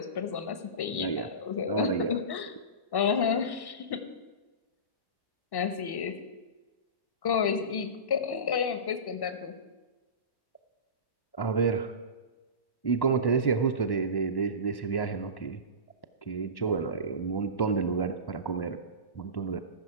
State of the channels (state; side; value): late; right; 1.1 ms